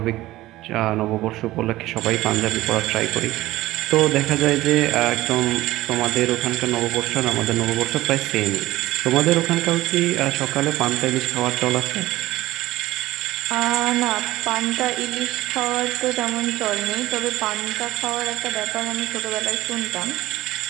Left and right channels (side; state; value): left; quieter; 16.9 dB